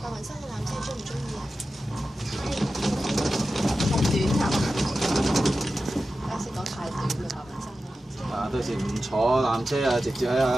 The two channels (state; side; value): normal; both; correlation 0.93